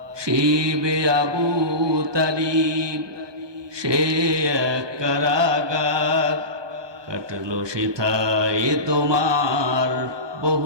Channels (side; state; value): left; late; 1.2 ms